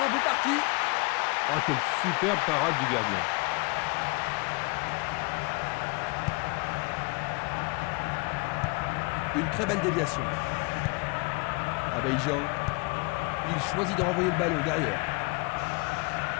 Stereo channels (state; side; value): quieter; right; 27.7 dB